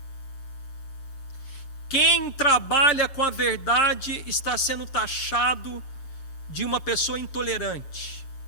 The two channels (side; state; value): right; late; 6.7 ms